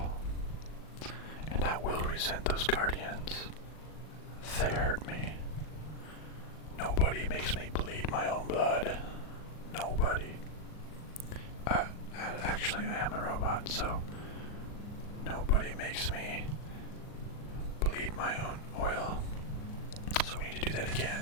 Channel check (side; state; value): right; late; 39 ms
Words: And I will resent those guardians. They hurt me. Nobody makes me bleed my own blood. Nobody. Actually, I am a robot, so nobody makes me bleed my own oil. So we need to do that again.